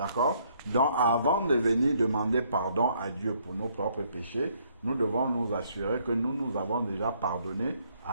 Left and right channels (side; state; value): both; inverted; correlation -0.68